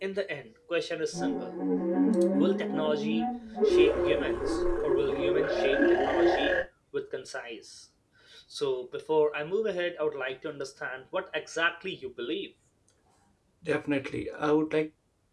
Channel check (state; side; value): identical; both; correlation 1.00